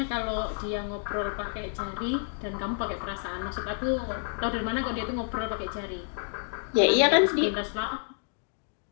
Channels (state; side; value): silent; right; 58 dB below the other